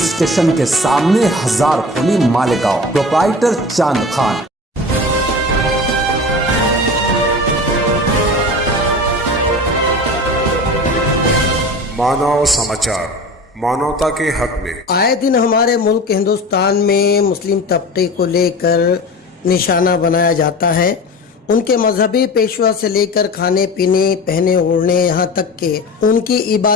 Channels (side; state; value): both; normal; correlation 0.34